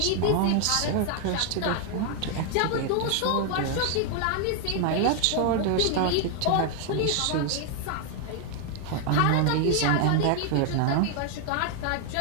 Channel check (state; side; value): different; both; correlation 0.00